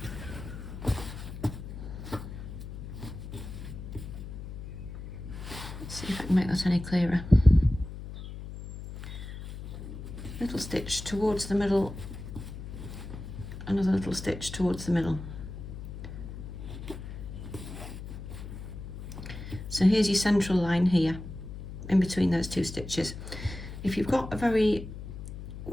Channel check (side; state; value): left; noise; hum, 10 dB below the sound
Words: Let's see if I can make that any clearer. Little stitch towards the middle, another little stitch towards the middle. So here's your central line here, in between those two stitches. If you've got a very